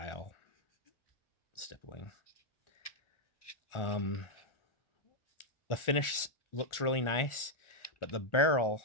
stippling. The finish looks really nice, but the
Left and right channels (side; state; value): right; late; 1.4 ms